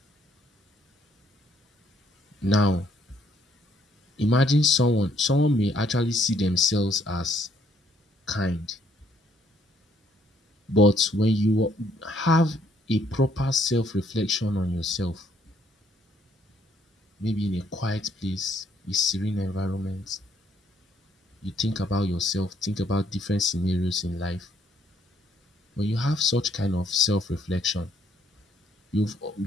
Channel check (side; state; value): both; normal; correlation 0.67